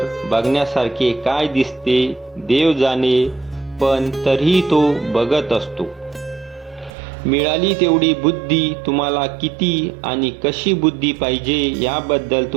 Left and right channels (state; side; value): drops out; left; at 6.9 s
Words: बघण्यासारखे काय दिसते देव जाणे, पण तरीही तो बघत असतो. मिळाली तेवढी बुद्धी. तुम्हाला किती आणि कशी बुद्धी पाहिजे याबद्दल